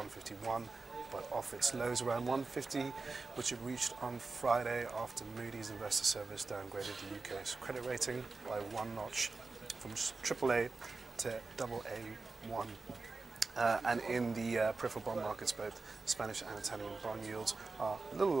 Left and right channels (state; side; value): quieter; left; 3.9 dB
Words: but off its lows around 150, which it reached on Friday after Moody's Investor Service downgraded the UK's credit rating by one notch from AAA to AA1. And in the peripheral bond markets, both Spanish and Italian bond yields are a little